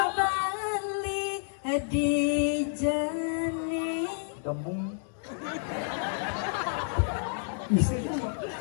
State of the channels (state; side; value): silent; right; digital silence